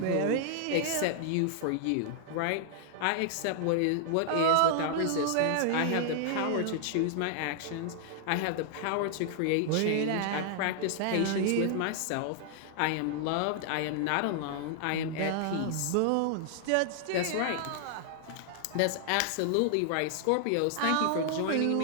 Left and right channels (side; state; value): both; different; correlation -0.01